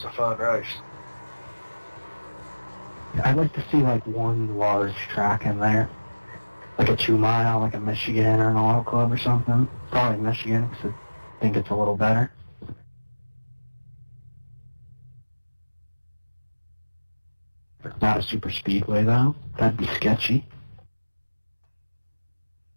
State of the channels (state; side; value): inverted; both; correlation -1.00